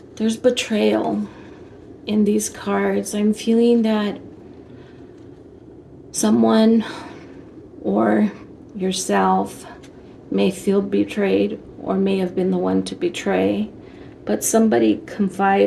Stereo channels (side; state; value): both; identical; correlation 1.00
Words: there's betrayal in these cards. I'm feeling that someone or yourself may feel betrayed, or may have been the one to betray, but somebody